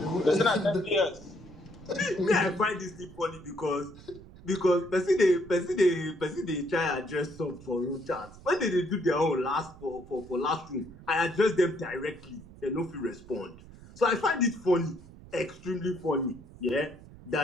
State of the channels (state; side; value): noise; right; rumble, 19 dB below the sound